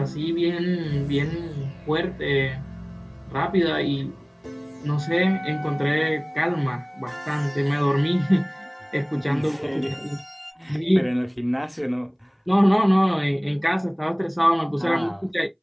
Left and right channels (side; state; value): both; identical; correlation 1.00